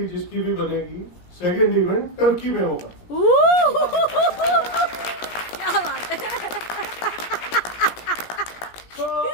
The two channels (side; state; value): right; late; 17 ms